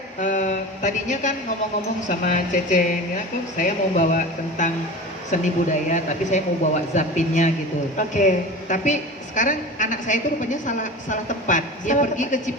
tadinya kan ngomong-ngomong sama Cece, ya, saya mau bawa tentang seni budaya, tapi saya mau bawa zapinnya gitu. Oke. Tapi sekarang anak saya itu rupanya salah tempat. Dia Salah pergi ke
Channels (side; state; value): both; normal; correlation 0.33